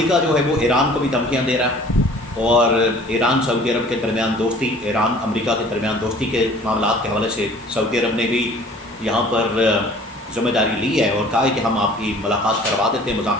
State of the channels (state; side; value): normal; both; correlation 0.50